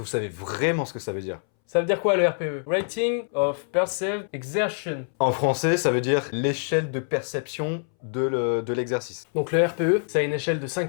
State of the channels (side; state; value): right; silent; 62 dB below the other